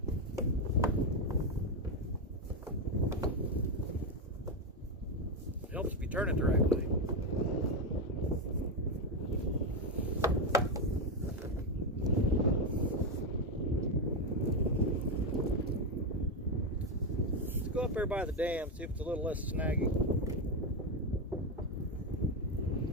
It helps if you turn it the right way. Let's go up there by the dam, see if it's a little less snaggy.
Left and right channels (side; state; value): both; normal; correlation 0.09